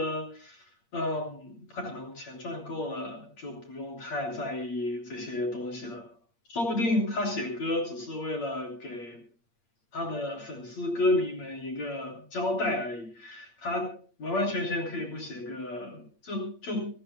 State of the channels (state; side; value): late; right; 8.6 ms